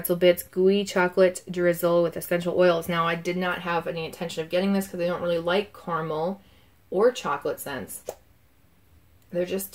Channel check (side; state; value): both; identical; correlation 1.00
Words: bits, gooey chocolate drizzle with essential oils. Now, I did not have any intention of getting this because I don't really like caramel or chocolate scents. They're just